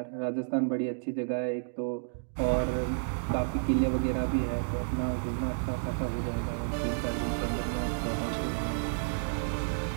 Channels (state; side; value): silent; left; digital silence